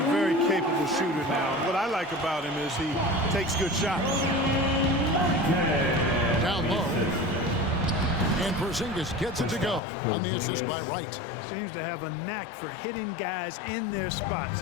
very capable shooter now. What I like about him is he takes good shots. Down low. And Porzingis gets it to go on the assist by Wright. Seems to have a knack for hitting guys in their spots.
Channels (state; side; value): drops out; right; at 9.8 s